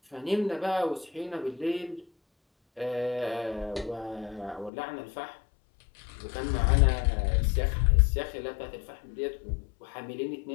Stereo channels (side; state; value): right; drops out; at 4.7 s